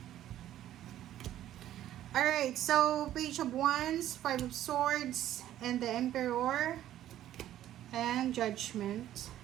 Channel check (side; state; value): left; quieter; 12.5 dB